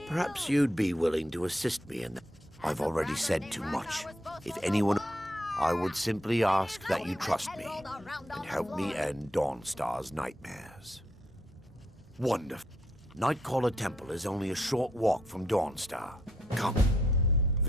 Perhaps you'd be willing to assist me in that. I've already said too much. If anyone... I would simply ask that you trust me and help me end Dawnstar's nightmares. Wonderful. Nightcaller Temple is only a short walk from Dawnstar. Come.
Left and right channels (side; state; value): both; normal; correlation 0.76